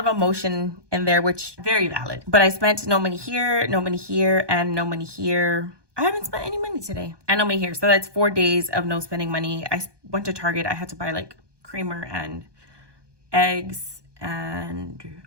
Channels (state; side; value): late; left; 1.2 ms